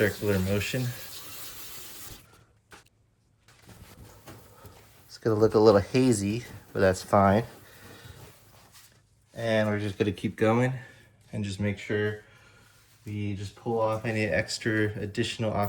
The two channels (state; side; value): identical; both; correlation 1.00